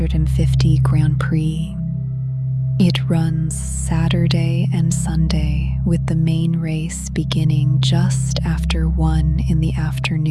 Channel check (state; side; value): identical; both; correlation 1.00